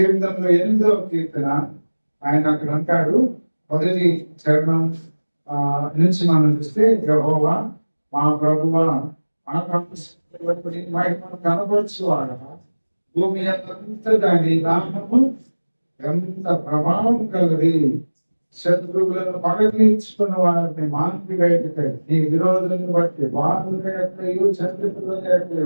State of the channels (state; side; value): inverted; both; correlation -1.00